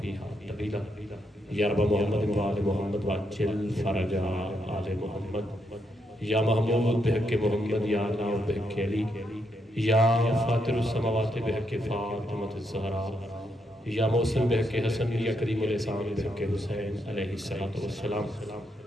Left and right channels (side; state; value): both; normal; correlation 0.79